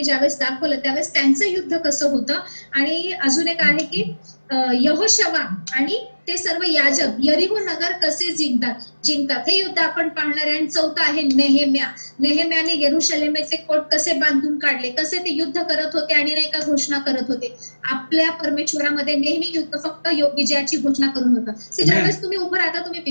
ज्यावेळेस दाखवलं त्यावेळेस त्यांचं युद्ध कसं होतं. आणि अजून एक आहे की यहोशवा आणि ते सर्व याजक यरीहो नगर कसे जिंकतात हे युद्ध आपण पाहणार आहे. आणि चौथा आहे नेहेम्याने यरूशलेमेचे कोट कसे बांधून काढले, कसे ते युद्ध करत होते आणि नाही का घोषणा करत होते. आपल्या परमेश्वरामध्ये नेहमी युद्ध फक्त विजयाची घोषणा करून होतं. ज्यावेळेस तुम्ही उभं राहता, तुम्ही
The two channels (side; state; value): both; inverted; correlation -1.00